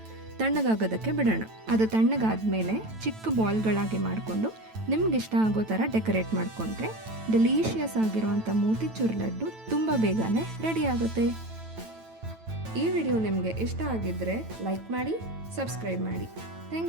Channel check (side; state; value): left; late; 9.1 ms